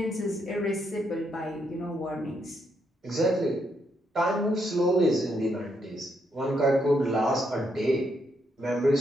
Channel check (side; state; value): both; normal; correlation 0.77